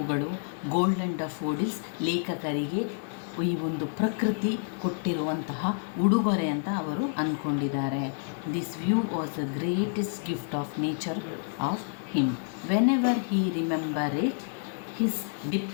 ಗೋಲ್ಡನ್ ಡಫೋಡಿಲ್ಸ್ ಲೇಖಕರಿಗೆ ಈ ಒಂದು ಪ್ರಕೃತಿ ಕೊಟ್ಟಿರುವಂತಹ ಉಡುಗೊರೆ ಅಂತ ಅವರು ಅಂದ್ಕೊಂಡಿದ್ದಾರೆ. This view was the greatest gift of nature of him. Whenever he remember it, his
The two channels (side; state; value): right; silent; digital silence